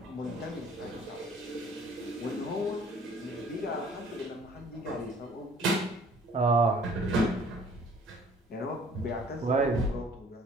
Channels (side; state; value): both; normal; correlation 0.55